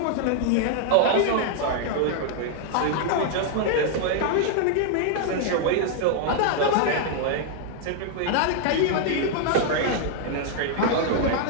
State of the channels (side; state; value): both; different; correlation 0.00